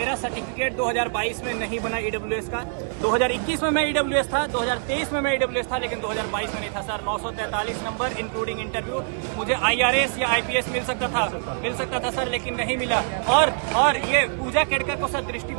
सर्टिफिकेट 2022 में नहीं बना EWS का। 2021 में मैं EWS था, 2023 में मैं EWS था, लेकिन 2022 में नहीं था सर। 943 number including interview. मुझे IRS या IPS मिल सकता था सर, लेकिन नहीं मिला। और ये पूजा केड़कर को सर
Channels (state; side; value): silent; left; 59 dB below the other